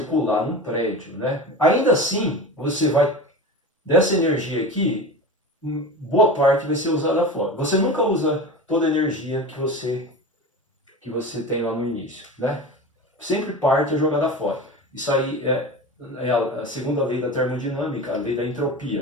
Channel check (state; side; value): normal; both; correlation 0.30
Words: num prédio, né? Ainda assim, você vai dessa energia aqui, boa parte vai ser usada fora. Você nunca usa toda a energia que você tem lá no início, né? Sempre parte é jogada fora. Isso aí é a segunda lei da termodinâmica, a lei da